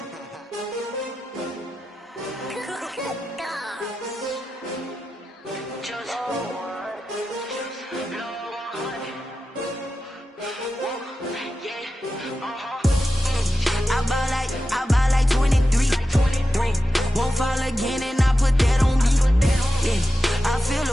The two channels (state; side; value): normal; both; correlation 0.92